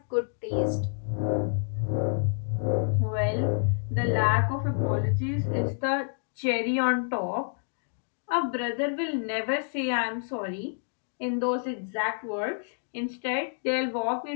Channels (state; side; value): silent; right; digital silence